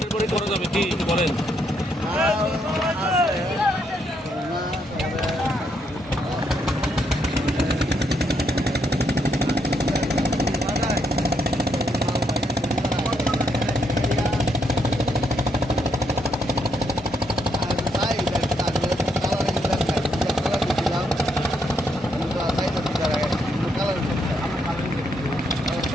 পরে করা যাবে কি বলেন?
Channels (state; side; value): normal; both; correlation 0.75